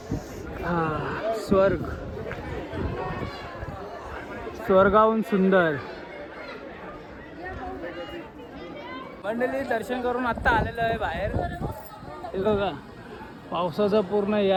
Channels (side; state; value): both; identical; correlation 1.00